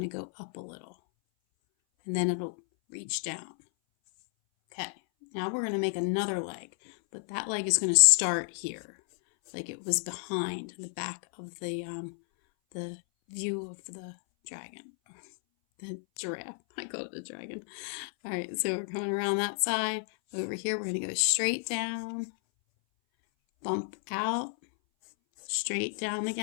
go up a little. And then it'll reach down. Okay, now we're going to make another leg, but that leg is going to start here, like it was behind the back of the view of the dragon, the giraffe. I call it a dragon. All right, so we're coming around that side. Over here, we're going to go straight down, bump out, straight down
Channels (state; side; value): silent; right; 57 dB below the other